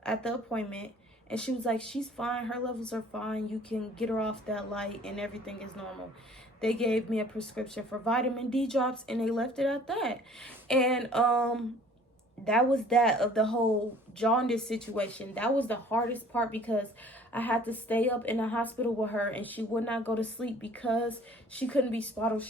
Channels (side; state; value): both; normal; correlation 0.52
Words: at the appointment. And she was like, she's fine. Her levels are fine. You can get her off that light and everything is normal. They gave me a prescription for vitamin D drops and they left it at that. And, that was that of the whole jaundice situation. That was the hardest part because I had to stay up in the hospital with her and she would not go to sleep because she couldn't be swaddled.